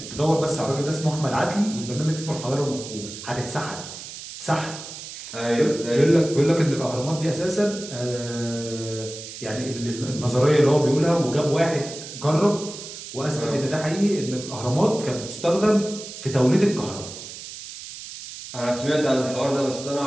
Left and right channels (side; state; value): right; noise; hiss, 12 dB below the sound